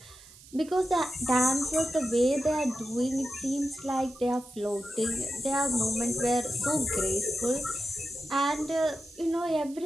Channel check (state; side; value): noise; right; hiss, 21 dB below the sound